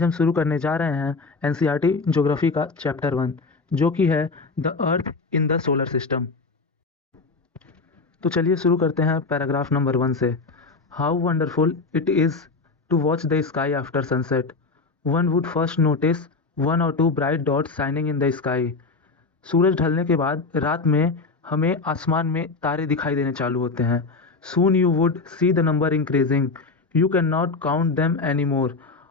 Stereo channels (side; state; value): right; quieter; 4.0 dB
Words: हम शुरू करने जा रहे हैं एनसीईआरटी ज्योग्राफी का चैप्टर 1, जो कि है the earth in the solar system. तो चलिए शुरू करते हैं पैराग्राफ नंबर 1 से। How wonderful it is to watch the sky after sunset. One would first notice one और two bright dots shining in the sky. सूरज ढलने के बाद रात में हमें आसमान में तारे दिखाई देने चालू होते हैं। Soon you would see the number increasing, you can not count them any more.